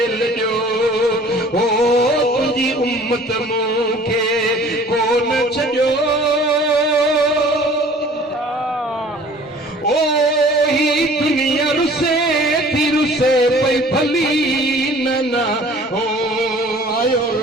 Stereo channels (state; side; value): normal; both; correlation 0.49